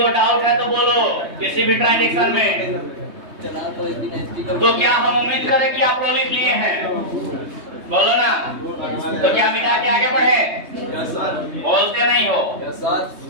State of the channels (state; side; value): late; left; 3.2 ms